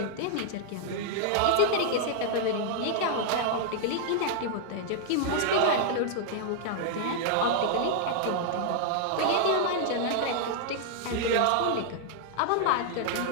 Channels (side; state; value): both; different; correlation -0.01